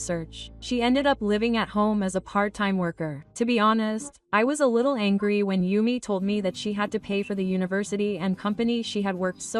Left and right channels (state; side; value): identical; both; correlation 1.00